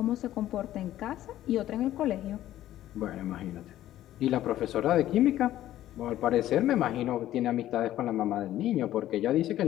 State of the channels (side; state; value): right; quieter; 13.4 dB